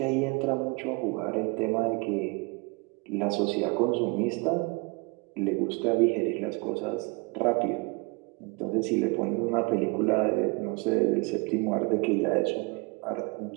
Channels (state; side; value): quieter; left; 29.6 dB